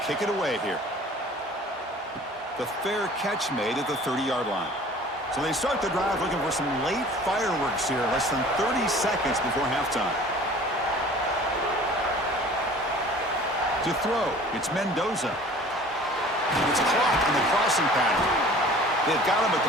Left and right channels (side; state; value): both; normal; correlation 0.47